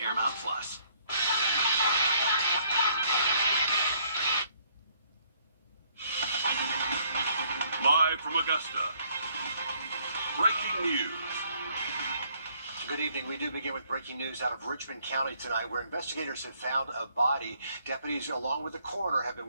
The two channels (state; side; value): inverted; both; correlation -0.66